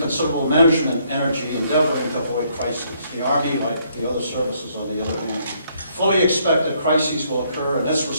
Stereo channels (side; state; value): both; inverted; correlation -0.69